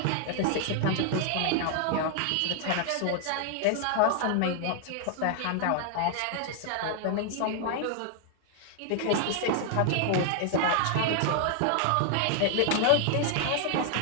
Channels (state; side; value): different; both; correlation 0.00